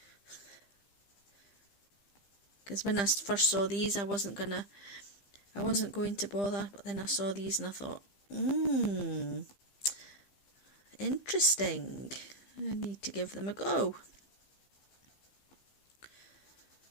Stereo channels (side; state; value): right; late; 15 ms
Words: Because when I first saw these, I wasn't going to bother, but then I saw these and I thought, interesting. I need to give them a go.